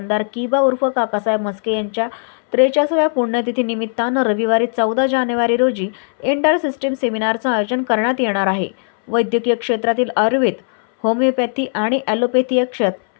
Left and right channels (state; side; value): silent; right; 63 dB below the other